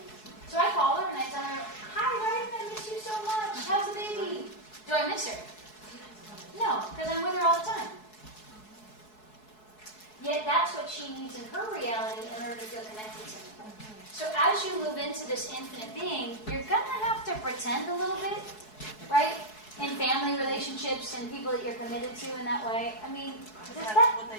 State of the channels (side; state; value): right; late; 4.7 ms